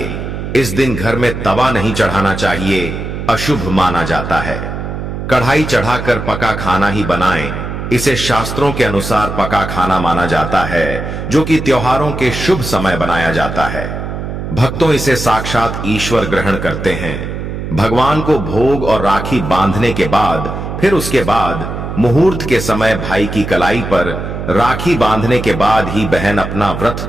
इस दिन घर में तवा नहीं चढ़ाना चाहिए, अशुभ माना जाता है। कढ़ाई चढ़ाकर पका खाना ही बनाएं। इसे शास्त्रों के अनुसार पका खाना माना जाता है, जो कि त्योहारों के शुभ समय बनाया जाता है। भक्तों, इसे साक्षात ईश्वर ग्रहण करते हैं। भगवान को भोग और राखी बांधने के बाद, फिर उसके बाद मुहूर्त के समय भाई की कलाई पर राखी बांधने के बाद ही बहन अपना व्रत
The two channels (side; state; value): right; noise; hum, 6 dB below the sound